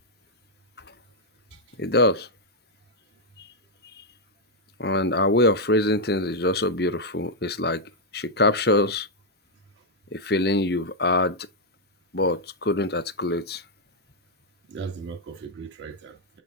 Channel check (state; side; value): normal; both; correlation -0.02